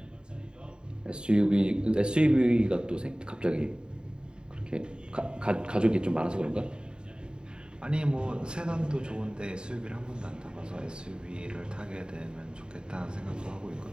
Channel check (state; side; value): late; left; 0.049 ms